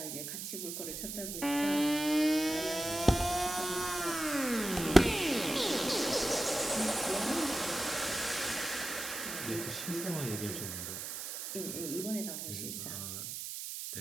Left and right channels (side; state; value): right; noise; hiss, 6 dB below the sound